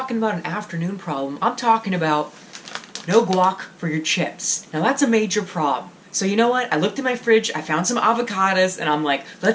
about an afternoon problem, I'm talking about no guac for your chips. Now that's a major problem. So you know what? I looked in my fridge, I found some avocados, and I'm like,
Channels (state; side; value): identical; both; correlation 1.00